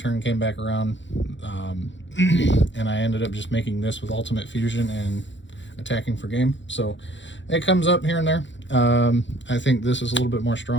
came back around, and I ended up just making this with ultimate fusion and attacking for game. So it comes up here and there. I think this is a little bit more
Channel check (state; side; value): late; right; 0.54 ms